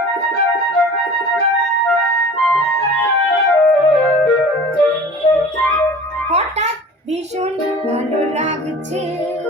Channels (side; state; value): both; normal; correlation 0.42